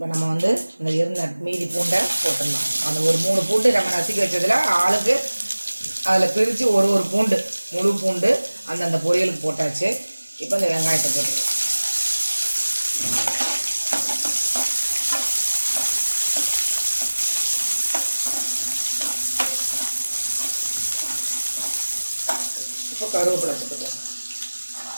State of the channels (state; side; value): inverted; both; correlation -1.00